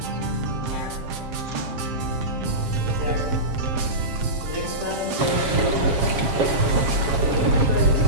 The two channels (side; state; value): left; late; 7.4 ms